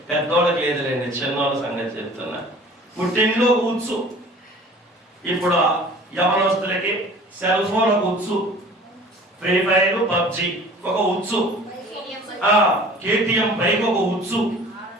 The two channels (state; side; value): normal; both; correlation 0.46